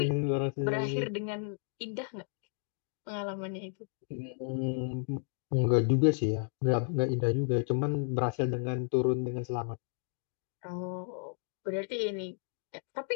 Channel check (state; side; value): silent; right; digital silence